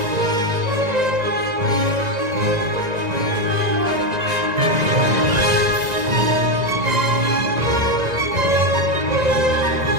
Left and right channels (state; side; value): late; left; 1.9 ms